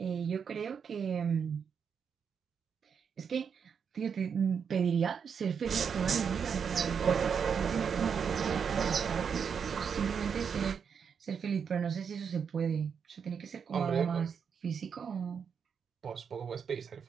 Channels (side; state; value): left; quieter; 6.7 dB